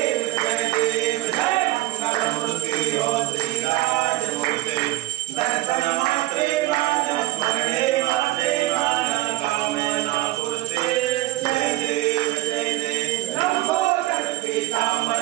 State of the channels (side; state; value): left; quieter; 17.2 dB